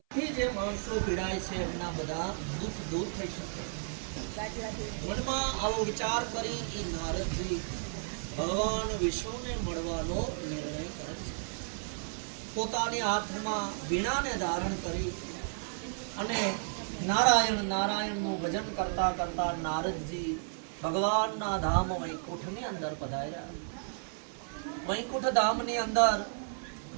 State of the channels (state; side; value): silent; left; 56 dB below the other